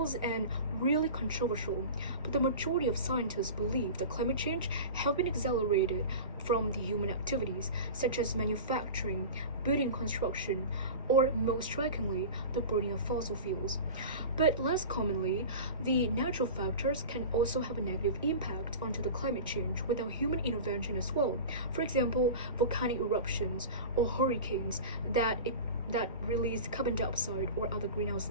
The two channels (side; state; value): both; inverted; correlation -0.32